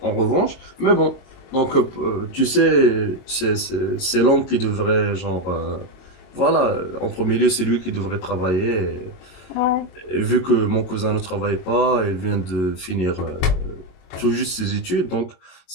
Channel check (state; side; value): late; right; 22 ms